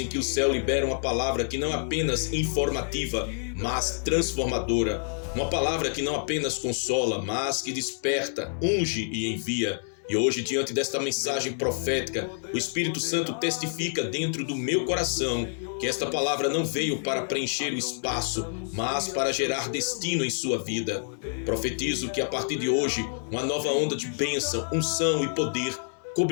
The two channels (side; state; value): right; silent; digital silence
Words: que o céu libera uma palavra que não é apenas informativa, mas transformadora. Uma palavra que não apenas consola, mas que desperta, unge e envia. E hoje, diante desta mensagem profética, o Espírito Santo testifica dentro do meu coração que esta palavra não veio para preencher o espaço, mas para gerar destino em sua vida. Profetizo que a partir de hoje, uma nova onda de bênção, unção e poder